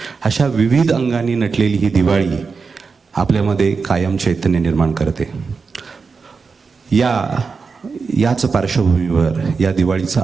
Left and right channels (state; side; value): quieter; left; 4.9 dB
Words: अशा विविध अंगांनी नटलेली ही दिवाळी आपल्यामध्ये कायम चैतन्य निर्माण करते. याच पार्श्वभूमीवर या दिवाळीचं